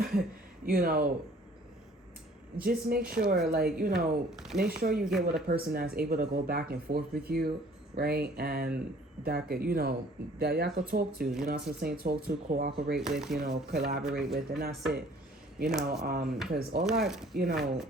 just make sure make sure you get with a person that's able to go back and forth with you, right? And that could that y'all could talk to, you know what I'm saying, talk to, cooperate with, collaborate with, and that's it. Because all that, yeah,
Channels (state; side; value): normal; both; correlation 0.54